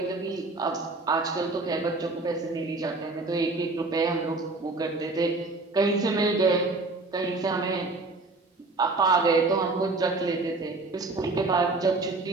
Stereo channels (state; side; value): quieter; left; 3.4 dB